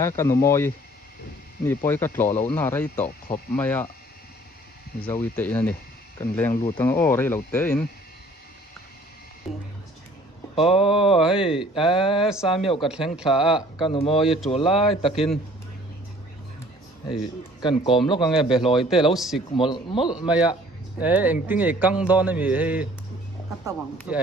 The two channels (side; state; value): both; normal; correlation 0.54